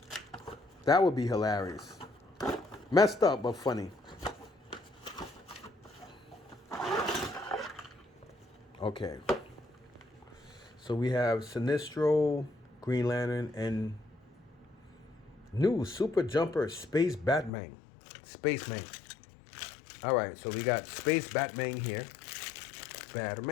That would be hilarious. Messed up, but funny. Okay. So we have Sinestro, Green Lantern, and new Super Jumper Space Batman. Spaceman. All right, so we got Space Batman here.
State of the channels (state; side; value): drops out; right; at 17.5 s